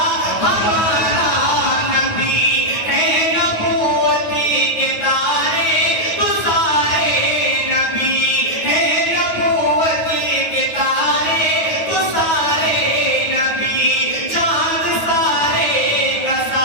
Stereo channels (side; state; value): right; late; 9.3 ms